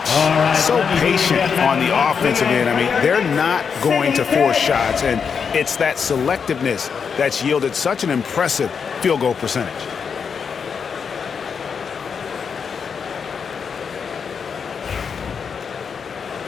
So patient on the offensive end. I mean, they're not going to force shots, and it's that selectiveness that's yielded such an impressive field goal percentage.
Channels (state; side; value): quieter; right; 6.3 dB